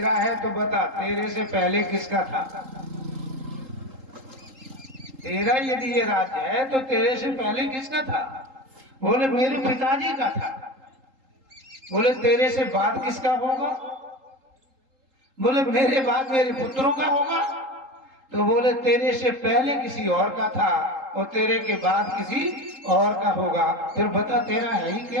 है तो बता, तेरे से पहले किसका था? तेरा यदि ये राज्य है तो तेरे से पहले किसका था? बोले मेरे पिताजी का था। बोले तेरे से बाद किसका होगा? बोले मेरे बाद मेरे पुत्रों का होगा। तो बोले तेरे से पहले किसी और का था और तेरे के बाद किसी और का होगा, फिर बता तेरा है ही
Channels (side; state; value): left; late; 3.8 ms